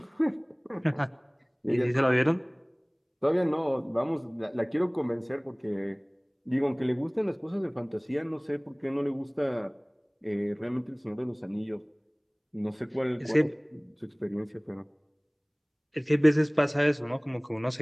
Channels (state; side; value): identical; both; correlation 1.00